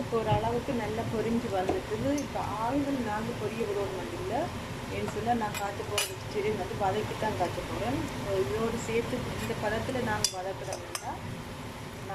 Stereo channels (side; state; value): both; identical; correlation 1.00